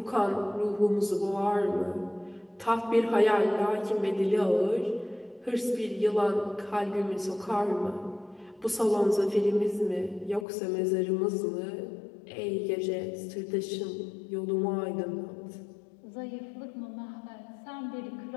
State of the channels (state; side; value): drops out; right; at 10.5 s